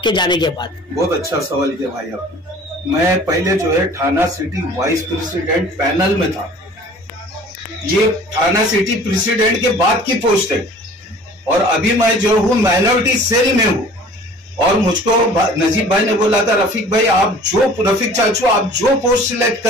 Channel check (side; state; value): both; normal; correlation 0.48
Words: जाने के बाद। बहुत अच्छा सवाल किया भाई आपने। मैं पहले जो है थाना सिटी वाइस प्रेसिडेंट पैनल में था, ये थाना सिटी प्रेसिडेंट के बाद की पोस्ट है, और अभी मैं जो हूँ माइनॉरिटी सेल में हूँ। और मुझको नजीब भाई ने बोला था, रफीक भाई रफीक चाचू आप जो पोस्ट सिलेक्ट